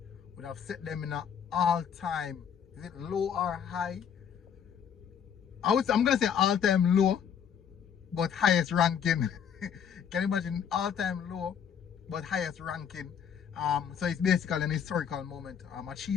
would have set them in an all-time, is it low or high? I'm gonna say all-time low, but highest ranking. Can you imagine all-time low, but highest ranking? So it's basically an historical moment,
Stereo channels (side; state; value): right; quieter; 7.9 dB